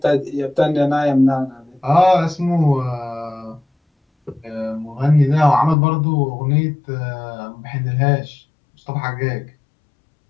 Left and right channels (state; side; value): drops out; right; at 5.8 s